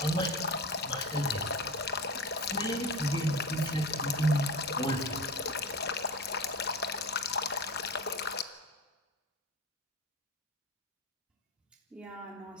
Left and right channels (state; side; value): normal; both; correlation 0.28